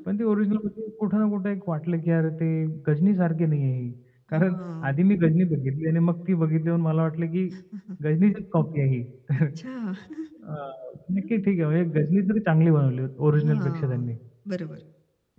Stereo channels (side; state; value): both; identical; correlation 1.00